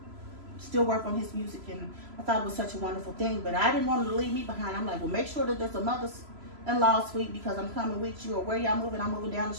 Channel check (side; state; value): left; late; 3.0 ms